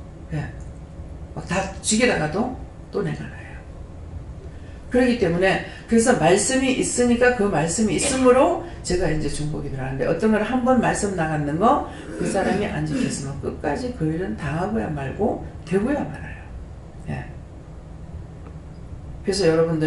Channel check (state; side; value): identical; both; correlation 1.00